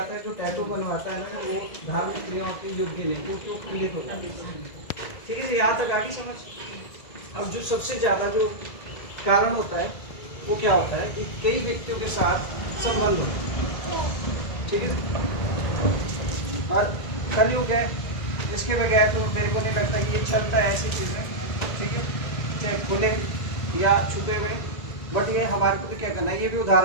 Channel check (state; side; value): late; right; 2.0 ms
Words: है जो टैटू बनवाता है ना वो धार्मिक क्रियाओं के योग्य नहीं, वो क्यों खंडित होता है, ठीक है? यहाँ तक आगे समझ। अब जो सबसे ज़्यादा जो कारण होता है वो क्या होता है कि कई व्यक्तियों के साथ संबंध होता है, ठीक है? और कलयुग है, इसके बगैर तो मेरे को नहीं लगता कि ये चलता है ऐसी चीज़ें, ठीक है, चाहे खुले या छुपे हुए। बट ये हमारे को तो क्या करना है, ये भी